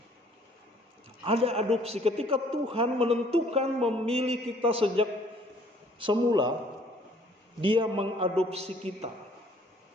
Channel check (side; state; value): both; normal; correlation 0.59